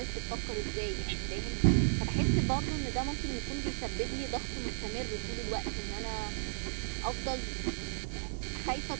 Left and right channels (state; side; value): silent; left; digital silence